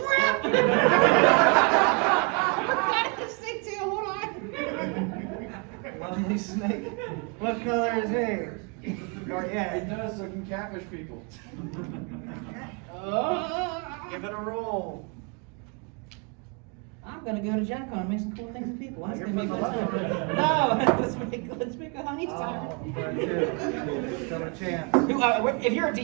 Got the snake tail, hold on. Lovely snake. What color is he? Or It yeah. does, so it can catfish people. Give it a roll. I'm gonna go to Gen Con and make some cool things with people. That's You're gonna be putting fun. a lot of No, let's make a honey Oh, siren. still a chance. If you're a DM,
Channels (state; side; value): quieter; left; 34.4 dB